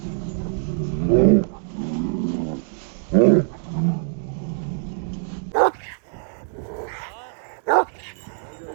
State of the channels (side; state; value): left; silent; digital silence